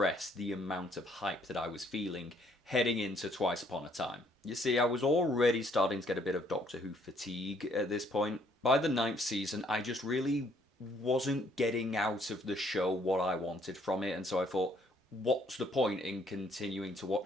the amount of hype that I was feeling heading into Twice Upon a Time. You see, I was already starting to get a bit of Doctor Who fatigue at this point. By the 9th season, I just really wasn't getting out of the show what I wanted from it, and so I thought, what's the point in continuing to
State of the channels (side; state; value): both; normal; correlation 0.66